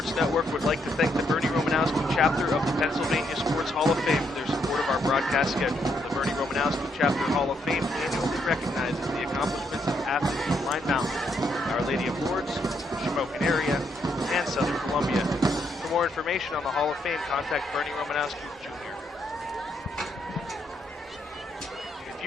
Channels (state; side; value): normal; both; correlation 0.76